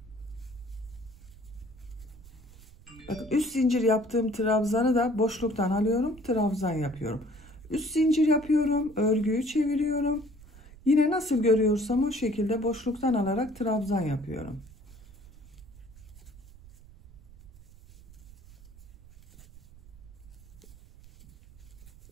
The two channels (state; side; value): noise; right; rumble, 21 dB below the sound